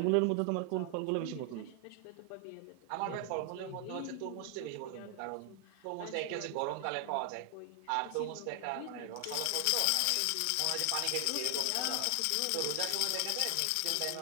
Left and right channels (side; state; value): both; different; correlation 0.00